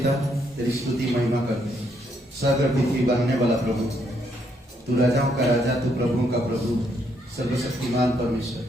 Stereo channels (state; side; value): normal; both; correlation 0.73